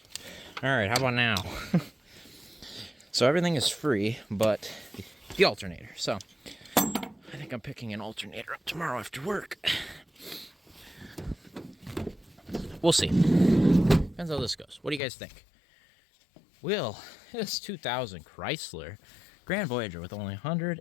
All right, how about now? So everything is free, but the alternator. So I think I'm picking an alternator up tomorrow after work. We'll see. Depends how this goes. What do you guys think? Will this 2000 Chrysler Grand Voyager with only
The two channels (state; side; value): drops out; right; at 15.0 s